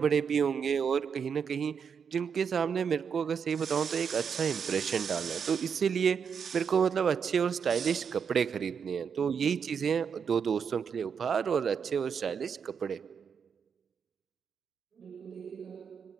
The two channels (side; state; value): left; quieter; 6.7 dB